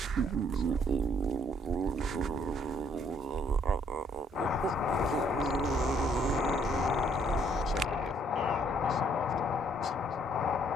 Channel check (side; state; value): both; normal; correlation 0.66